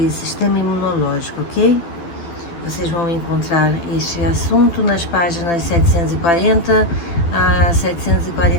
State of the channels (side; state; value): right; late; 12 ms